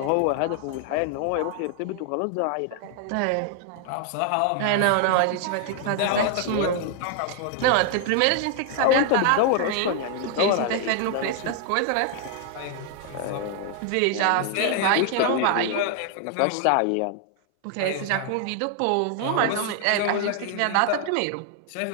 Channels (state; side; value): different; both; correlation 0.00